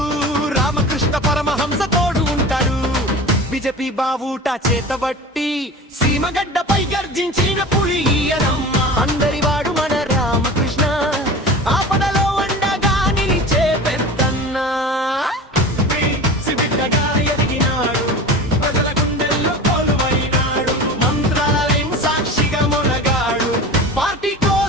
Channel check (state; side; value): normal; both; correlation 0.34